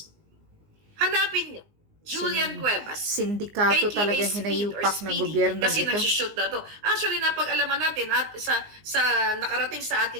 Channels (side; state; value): left; late; 19 ms